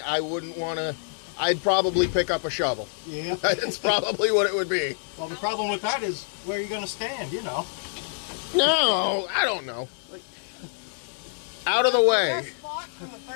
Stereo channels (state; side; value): silent; right; 61 dB below the other